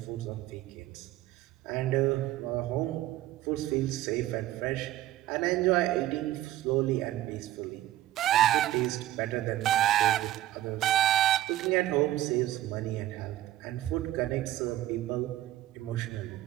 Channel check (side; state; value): left; quieter; 14.3 dB